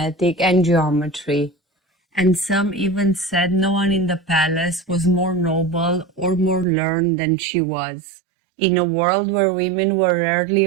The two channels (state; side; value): drops out; left; at 6.7 s